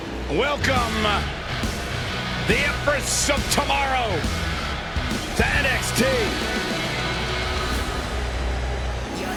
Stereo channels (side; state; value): both; identical; correlation 1.00